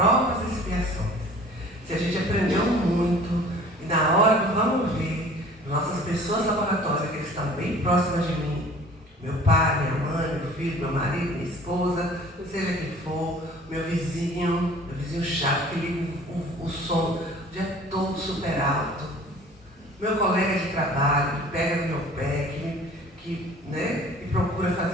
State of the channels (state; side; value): normal; both; correlation 0.48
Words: e expiações. Se a gente aprendeu muito e na hora do vamos ver, nossas pessoas laboratórias, que eles estão bem próximas de mim, meu pai, minha mãe, meu filho, meu marido, minha esposa, seja quem for, meu vizinho chato, que liga o som o dia todo super alto, meu colega de trabalho, que pega no meu pé, que procura